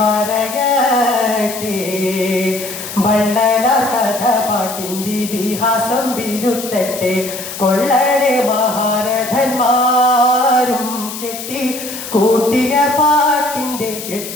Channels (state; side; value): noise; left; hiss, 9 dB below the sound